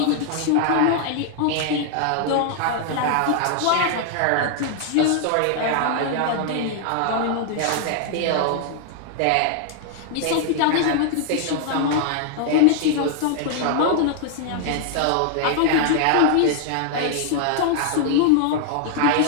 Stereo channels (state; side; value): different; both; correlation 0.00